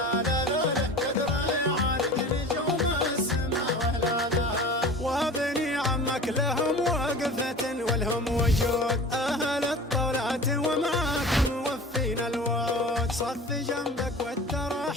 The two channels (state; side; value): normal; both; correlation 0.38